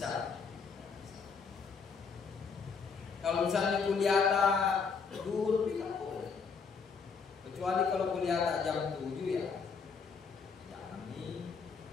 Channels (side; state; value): right; quieter; 5.5 dB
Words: Kalau misalnya kuliah duhur, tidak boleh. kecuali kalau kuliah tak jam 7 ya jangan nih,